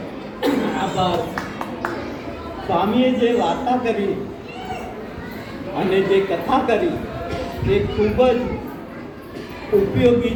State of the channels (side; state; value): both; identical; correlation 1.00